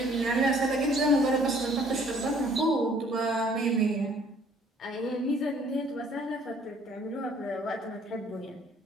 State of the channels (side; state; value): both; normal; correlation 0.59